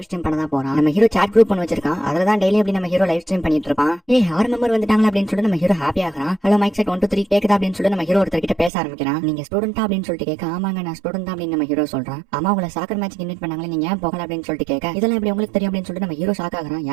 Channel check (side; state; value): left; drops out; at 8.7 s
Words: ஸ்ட்ரீம் பண்ண தான் போறான். நம்ம ஹீரோ சாட் குரூப் பண்ணி வச்சிருக்கான். அதுல தான் டெய்லி அப்படி நம்ம ஹீரோ லைவ் ஸ்ட்ரீம் பண்ணிட்டு இருப்பான். 6 மெம்பர் வந்துட்டாங்க அப்படின்னு சொல்லிட்டு நம்ம ஹீரோ ஹாப்பி ஆகிறான். ஹலோ மைக் செட் 1 2 3 கேக்குதா அப்படின்னு சொல்லிட்டு நம்ம ஹீரோ ஒருத்தர் கிட்ட பேச ஆரம்பிக்கிறான். நீங்க ஸ்டூடெண்டா அப்படின்னு சொல்லிட்டு கேட்க, ஆமாங்க நான் ஸ்டூடெண்ட் தான் அப்படின்னு நம்ம ஹீரோ சொல்றான். ஆமா உங்களை சாக்கர் மேட்ச்க்கு இன்வைட் பண்ணாங்களே, நீங்க ஏன் போகல அப்படின்னு சொல்லிட்டு கேட்க, இதெல்லாம் எப்படி உங்களுக்கு தெரியும் அப்படின்னு சொல்லிட்டு நம்ம ஹீரோ ஷாக் ஆகிறான்.